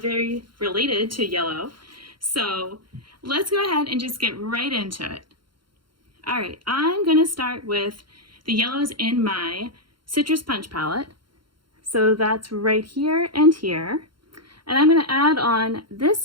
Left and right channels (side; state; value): left; late; 0.73 ms